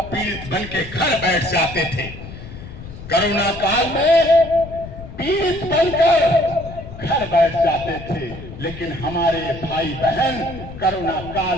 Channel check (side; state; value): left; noise; rumble, 13 dB below the sound